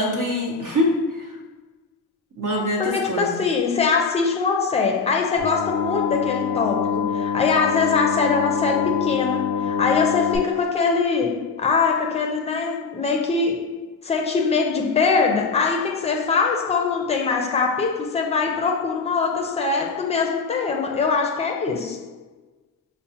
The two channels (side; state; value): right; quieter; 4.5 dB